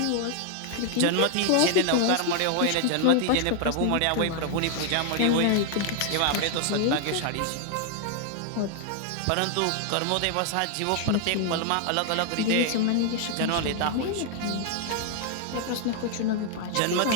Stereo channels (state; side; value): different; both; correlation 0.00